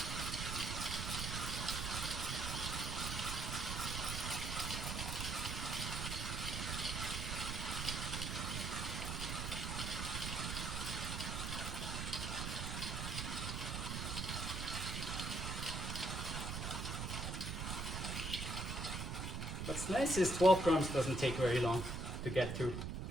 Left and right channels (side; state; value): right; noise; rumble, 3 dB below the sound